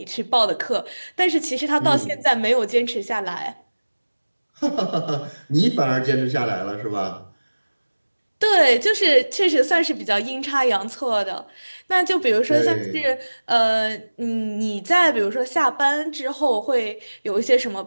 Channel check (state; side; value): inverted; both; correlation -1.00